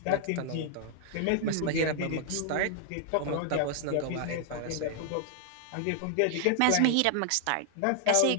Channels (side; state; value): both; different; correlation -0.01